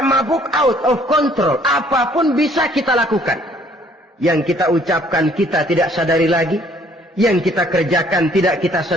mabuk, out of control, apapun bisa kita lakukan. Yang kita ucapkan kita tidak sadari lagi, yang kita kerjakan tidak kita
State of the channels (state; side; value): normal; both; correlation 0.61